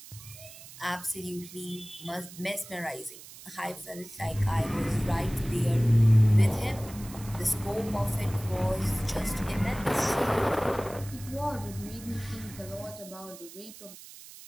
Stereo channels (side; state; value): right; noise; hiss, 17 dB below the sound